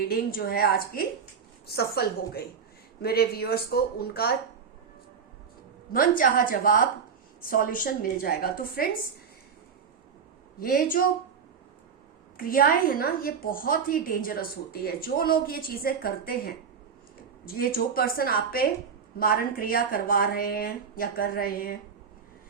जो है आज की सफल हो गई। मेरे व्यूअर्स को उनका मनचाहा जवाब, सॉल्यूशन मिल जाएगा। तो फ्रेंड्स, ये जो क्रियाएं है ना, ये बहुत ही डेंजरस होती है। जो लोग ये चीजें करते हैं, ये जो पर्सन आप पे मारण क्रिया करवा रहे हैं या कर रहे हैं,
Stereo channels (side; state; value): left; quieter; 6.5 dB